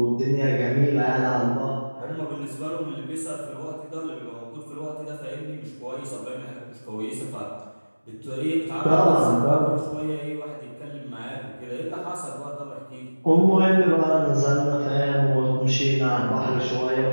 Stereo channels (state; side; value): inverted; both; correlation -1.00